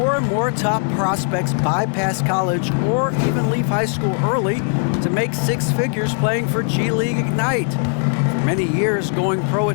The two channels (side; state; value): right; silent; 55 dB below the other